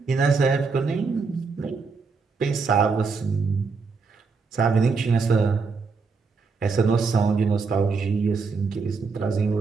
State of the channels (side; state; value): left; quieter; 4.7 dB